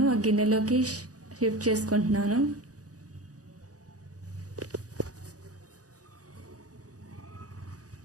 ఆ గిన్నెలోకి షిఫ్ట్ చేసుకుంటున్నాను.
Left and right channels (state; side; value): late; left; 0.67 ms